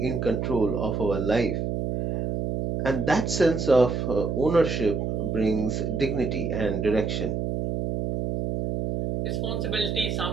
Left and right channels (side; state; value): right; noise; hum, 1 dB below the sound